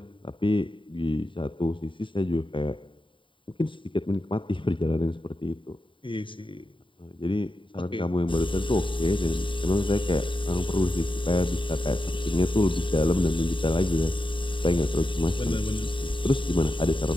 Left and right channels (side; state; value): right; late; 0.24 ms